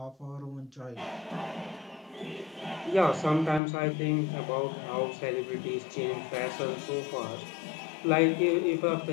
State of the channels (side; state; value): right; drops out; at 3.6 s